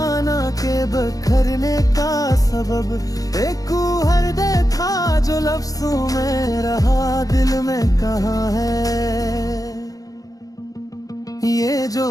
के बखरने का सबब, एक हर दे था जो लफ्जों में रहा दिल में कहाँ है। ये जो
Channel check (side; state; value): right; late; 0.17 ms